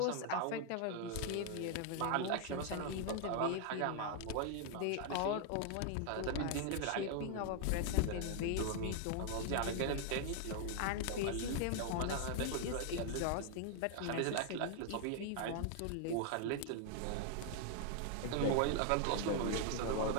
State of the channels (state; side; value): different; both; correlation 0.00